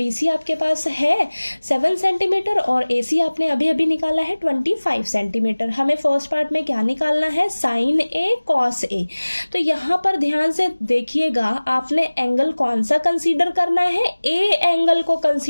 आपके पास है 7 सेंटीमीटर और AC आपने अभी अभी निकाला है 25 सेंटीमीटर। हमें फर्स्ट पार्ट में क्या निकालना है, साइन A कॉस A। तो यहाँ पर ध्यान से देखिएगा, आपने एंगल कौन सा कंसीडर करना है, A एंगल को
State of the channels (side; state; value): both; inverted; correlation -1.00